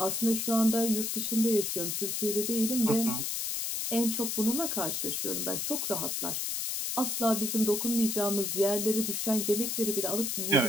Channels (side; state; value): left; noise; hiss, 1 dB below the sound